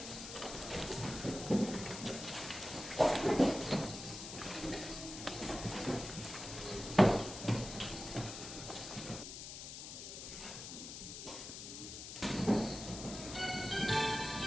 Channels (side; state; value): left; noise; hiss, 9 dB below the sound